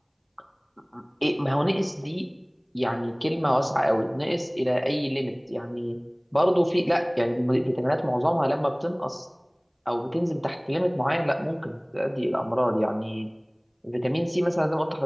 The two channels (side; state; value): both; identical; correlation 1.00